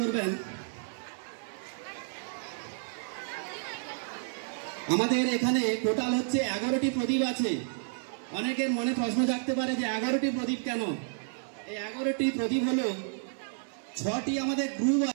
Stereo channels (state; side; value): silent; left; digital silence